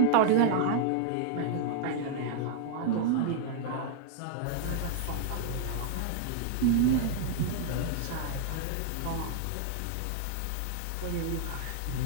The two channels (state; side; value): different; both; correlation -0.01